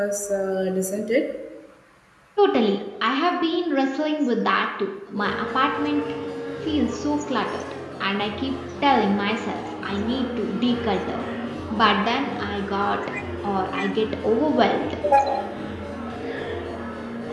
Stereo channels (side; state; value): both; identical; correlation 1.00